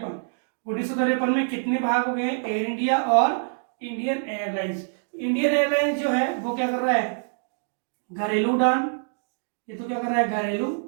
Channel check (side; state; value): left; silent; digital silence